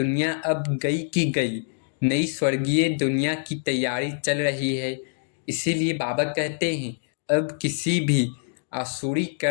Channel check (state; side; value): silent; right; digital silence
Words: अब गई की गई, नई स्वर्गीय दुनिया की तैयारी चल रही है। इसीलिए बाबा कहते हैं अब किसी भी आसुरी